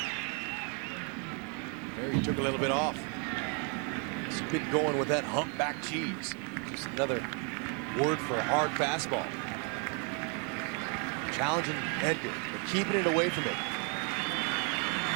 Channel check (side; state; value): left; quieter; 37.5 dB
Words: He took a little bit off. He's been going with that humpback cheese. Just another word for a hard fastball. Challenging Edgar, but keeping it away from him.